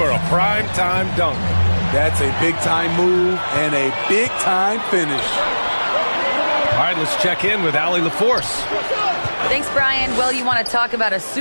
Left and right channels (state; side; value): inverted; both; correlation -1.00